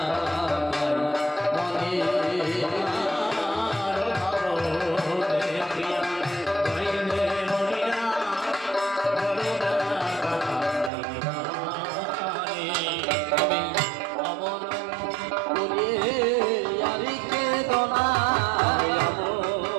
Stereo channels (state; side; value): drops out; left; at 10.9 s